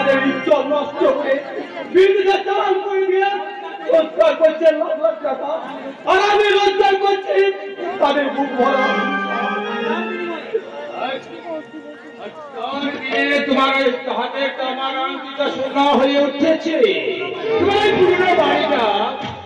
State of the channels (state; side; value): identical; both; correlation 1.00